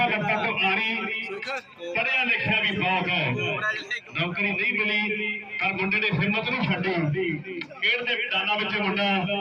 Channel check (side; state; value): both; identical; correlation 1.00